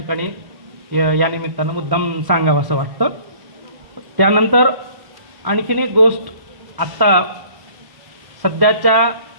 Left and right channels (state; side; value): late; left; 1.0 ms